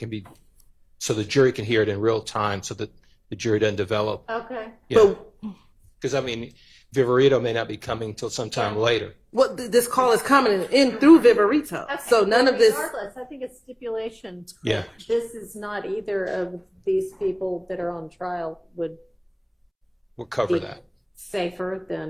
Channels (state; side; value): identical; both; correlation 1.00